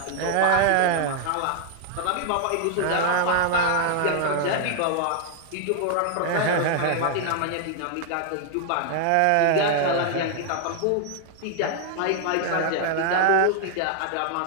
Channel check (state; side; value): different; both; correlation 0.00